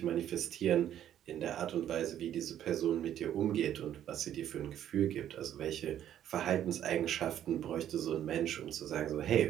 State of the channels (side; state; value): left; quieter; 10.9 dB